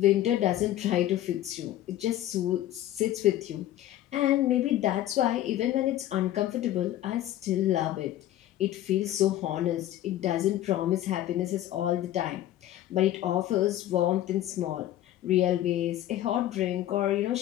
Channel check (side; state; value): right; quieter; 13.2 dB